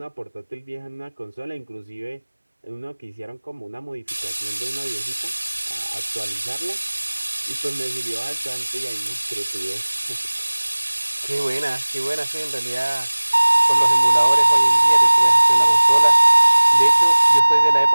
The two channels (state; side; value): inverted; both; correlation -1.00